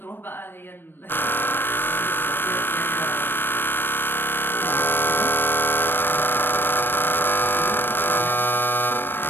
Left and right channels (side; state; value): right; late; 0.097 ms